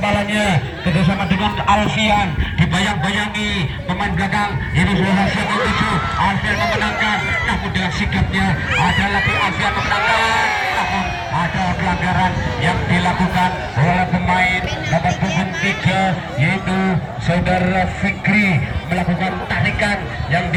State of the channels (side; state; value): both; identical; correlation 1.00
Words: kerjasama dengan Alfian, dibayang-bayangi pemain belakang ini sudah hasil menuju Alfian memenangkan, namun dengan sikapnya ada lagi Alfian memenangkan, namun ada pelanggaran yang dilakukan oleh pemain nomor punggung 3 yaitu saudara Fikri, melakukan tarikan yang